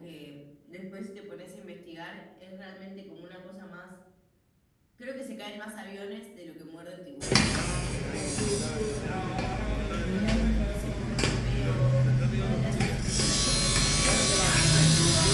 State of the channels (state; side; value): identical; both; correlation 1.00